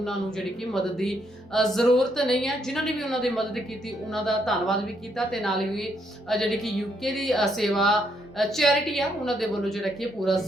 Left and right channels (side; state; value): both; normal; correlation 0.74